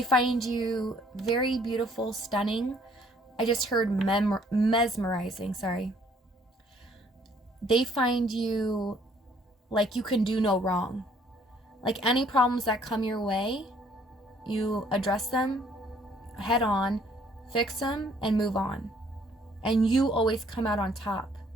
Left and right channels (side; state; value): both; normal; correlation 0.62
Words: find you very beautiful, stunning. I just heard mesmerizing, sorry. They find you like you can do no wrong. Like any problems that come your way, you address them head on, fix them, and move on. And you always come out on top.